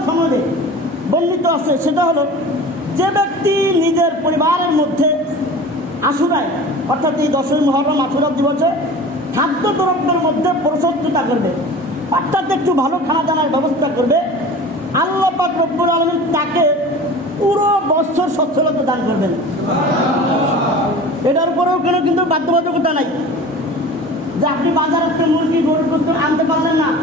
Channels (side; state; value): both; normal; correlation 0.38